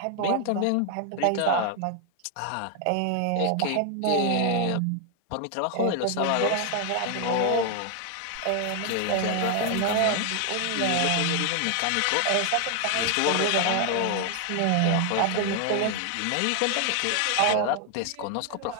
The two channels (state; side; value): different; both; correlation 0.00